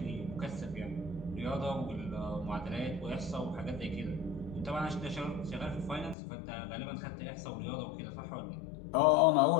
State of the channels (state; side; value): drops out; right; at 6.2 s